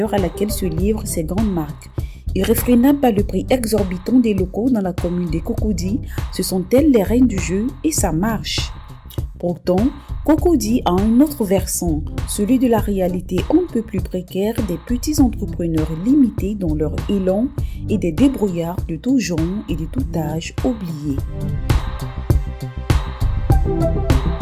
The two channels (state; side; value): identical; both; correlation 1.00